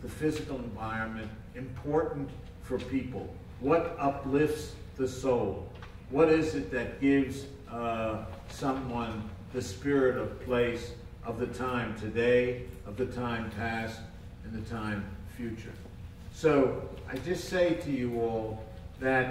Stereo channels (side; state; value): both; identical; correlation 1.00